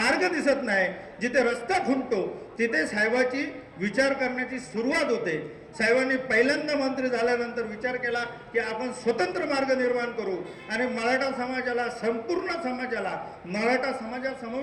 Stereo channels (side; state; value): both; identical; correlation 1.00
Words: दिसत नाही, जिथे रस्ता खुंटतो तिथे साहेबाची विचार करण्याची सुरुवात होते. साहेबांनी पहिल्यांदा मंत्री झाल्यानंतर विचार केला की आपण स्वतंत्र मार्ग निर्माण करू आणि मराठा समाजाला, संपूर्ण समाजाला, मराठा